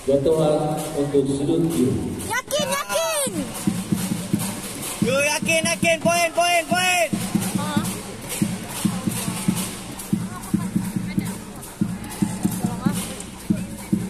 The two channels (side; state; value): both; identical; correlation 1.00